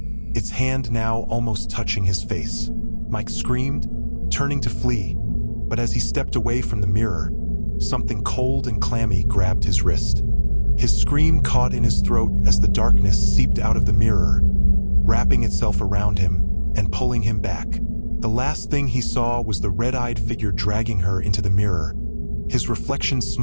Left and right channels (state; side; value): inverted; both; correlation -1.00